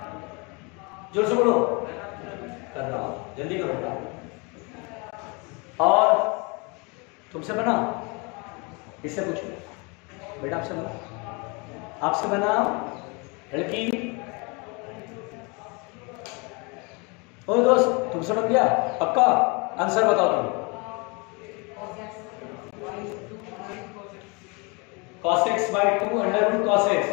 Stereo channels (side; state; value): right; quieter; 30.1 dB